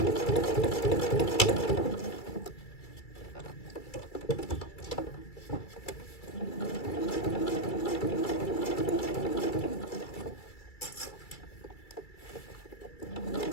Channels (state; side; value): late; right; 2.3 ms